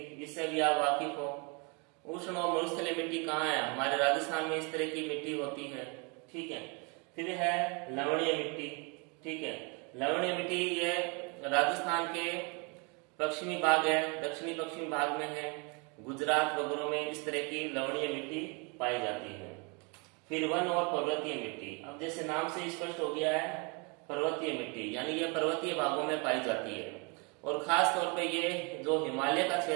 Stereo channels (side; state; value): left; quieter; 32.2 dB